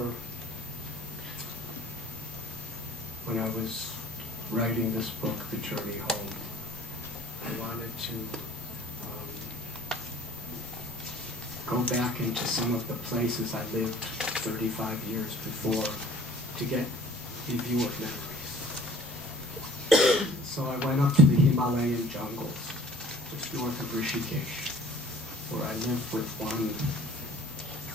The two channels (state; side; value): normal; both; correlation 0.50